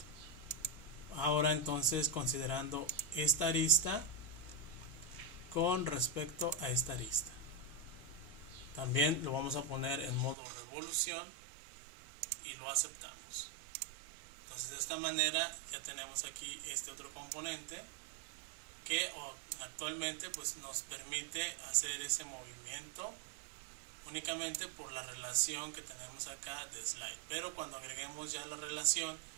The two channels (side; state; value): left; drops out; at 10.4 s